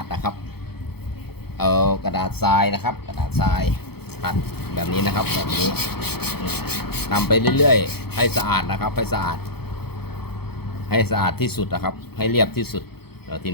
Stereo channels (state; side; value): late; right; 0.96 ms